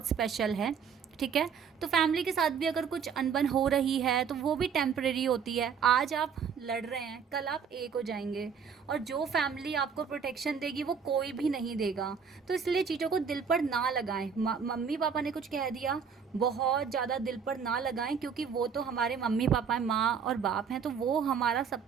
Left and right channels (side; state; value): left; quieter; 6.6 dB